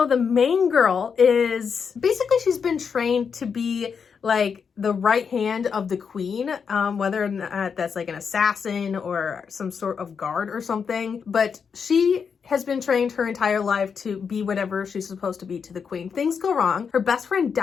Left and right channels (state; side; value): quieter; right; 6.3 dB